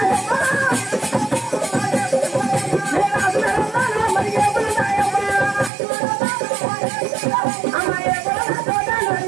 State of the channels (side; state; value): left; drops out; at 5.7 s